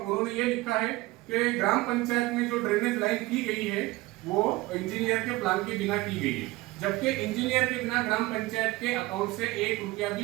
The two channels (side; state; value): left; quieter; 20.1 dB